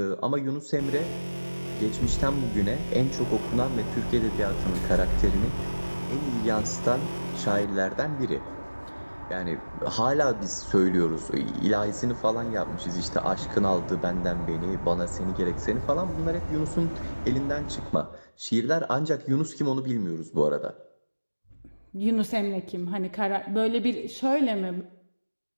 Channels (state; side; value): inverted; both; correlation -1.00